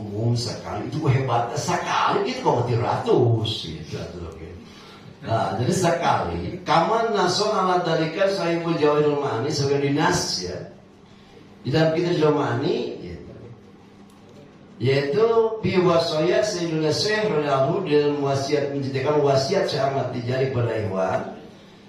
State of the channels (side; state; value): both; identical; correlation 1.00